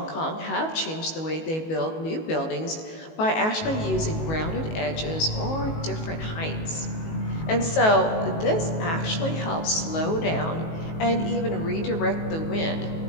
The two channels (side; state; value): right; late; 19 ms